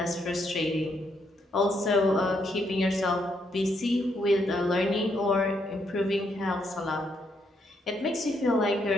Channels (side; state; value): both; normal; correlation 0.75